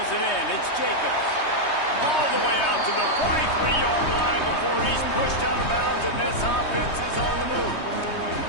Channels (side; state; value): right; late; 3.2 ms